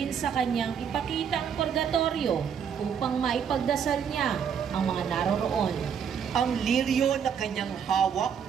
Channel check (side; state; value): left; quieter; 7.6 dB